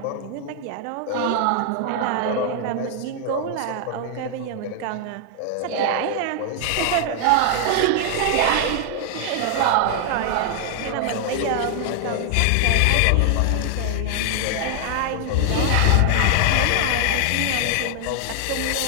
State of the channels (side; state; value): both; different; correlation 0.00